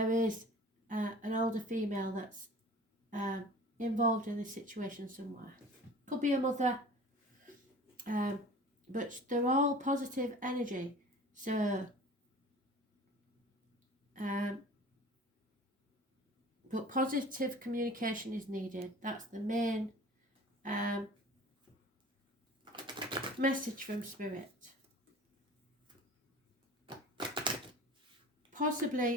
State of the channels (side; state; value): both; normal; correlation 0.42